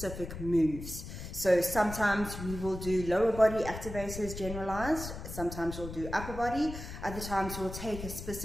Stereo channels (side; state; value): left; noise; rumble, 9 dB below the sound